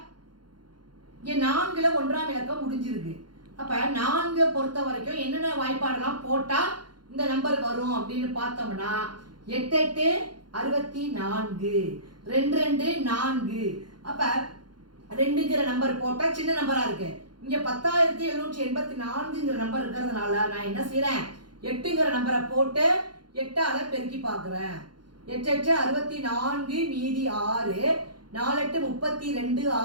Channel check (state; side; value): late; left; 0.71 ms